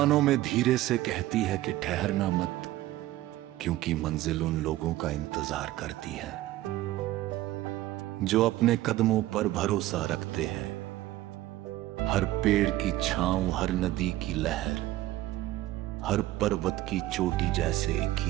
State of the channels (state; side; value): quieter; left; 15.8 dB